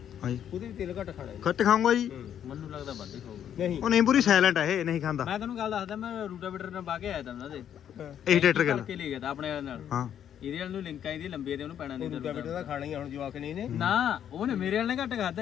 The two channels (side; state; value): right; quieter; 9.6 dB